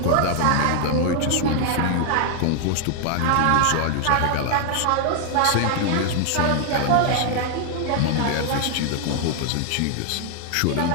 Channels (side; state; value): both; different; correlation 0.00